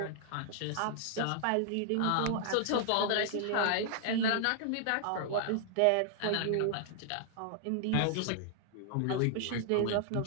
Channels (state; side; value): different; both; correlation 0.00